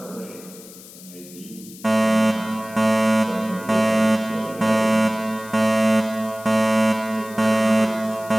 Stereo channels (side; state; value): left; noise; hiss, 19 dB below the sound